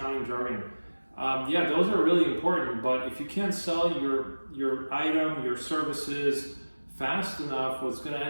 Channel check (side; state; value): both; inverted; correlation -1.00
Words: jargon? Yeah, those are really important, but if you can't sell your item, your services fast enough, what's going to